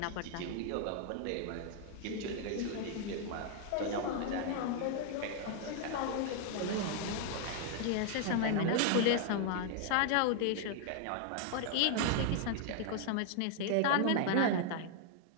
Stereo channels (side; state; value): both; different; correlation 0.00